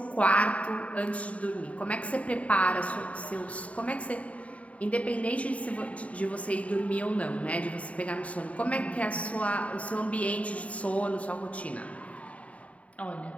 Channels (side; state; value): right; late; 0.067 ms